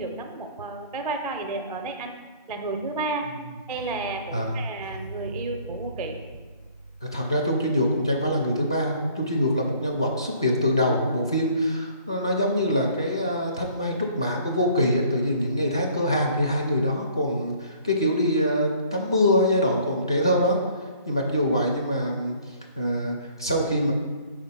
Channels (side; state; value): both; inverted; correlation -0.56